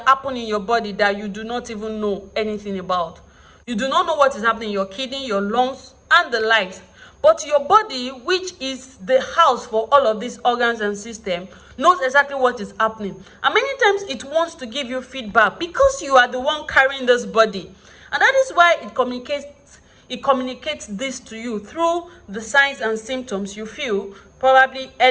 happen in your body that you do not even know anything about. You do not know what is happening in your kidney, your lungs, and the likes. But your body, which is the house for all of these organs and systems, knows exactly what is happening. And many times it wants to give you feedback because you are the one carrying this body. And that is why it communicates this to you through the signs and symptoms you feel, probably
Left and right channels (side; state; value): both; identical; correlation 1.00